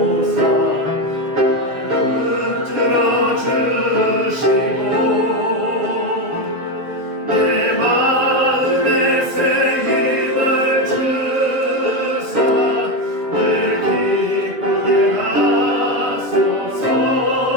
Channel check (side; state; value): left; late; 7.4 ms